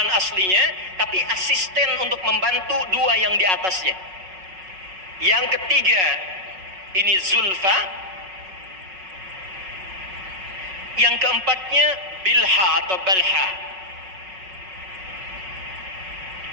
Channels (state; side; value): late; left; 5.4 ms